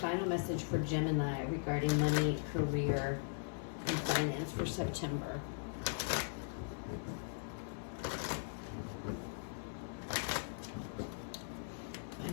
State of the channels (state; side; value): silent; right; 52 dB below the other